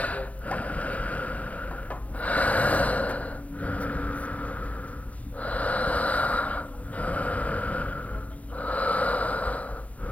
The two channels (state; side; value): late; right; 0.069 ms